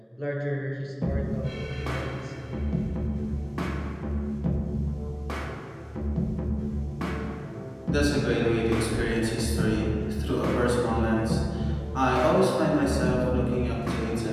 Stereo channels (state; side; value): identical; both; correlation 1.00